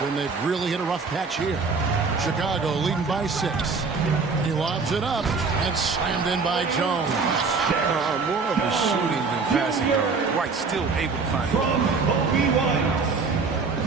and they've really hit a rough patch here. Chicago leading by 6. He lobs it up and slammed in by Jones. More of a shooting than passing guard. White still able to find it.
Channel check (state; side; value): quieter; left; 4.6 dB